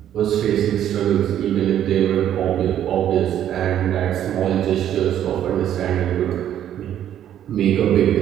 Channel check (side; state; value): left; quieter; 10.7 dB